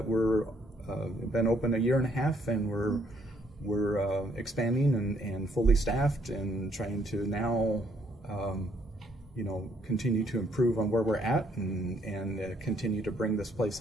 we're been open a year and a half, and we're expanding and fully staffed and trying to now you know, continue to improve on where we're at and continue to bring this place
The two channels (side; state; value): both; normal; correlation 0.69